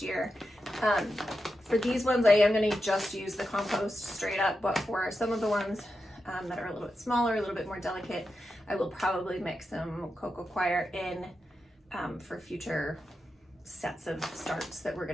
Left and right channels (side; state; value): both; normal; correlation 0.89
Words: year. For these ones, I am going to just use the compost straight up, but for some of the ones that are a little bit smaller, a little bit more delicate, I will probably mix some cocoa coir in for future sets of starts that we're